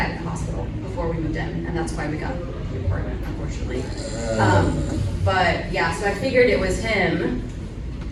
in the hospital before we moved in, and that's why we got the apartment, unfortunately. But yeah, so I figured it was him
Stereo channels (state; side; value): identical; both; correlation 1.00